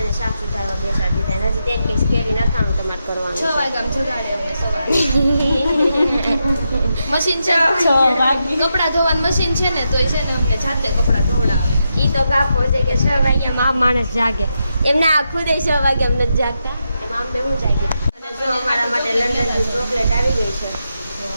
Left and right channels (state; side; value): inverted; both; correlation -0.85